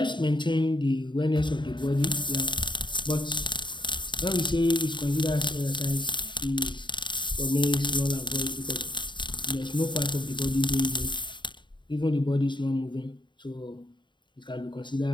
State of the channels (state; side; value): late; right; 0.23 ms